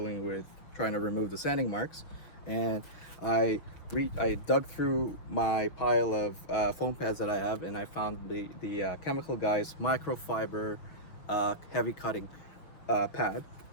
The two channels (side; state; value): right; late; 6.5 ms